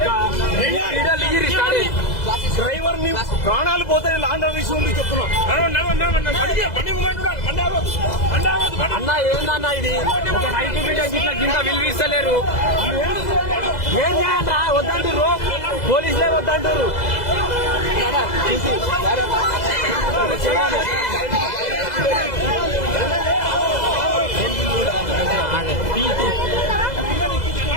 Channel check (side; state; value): right; late; 2.0 ms